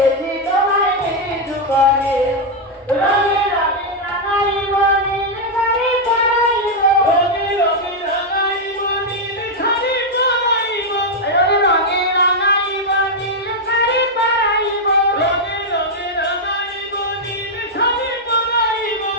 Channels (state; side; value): normal; both; correlation 0.00